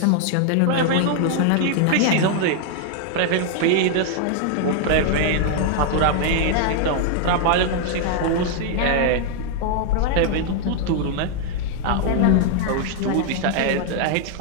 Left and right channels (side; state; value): both; different; correlation 0.00